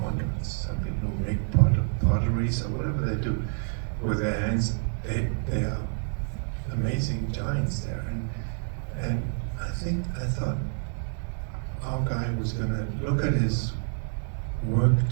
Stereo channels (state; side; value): silent; left; 59 dB below the other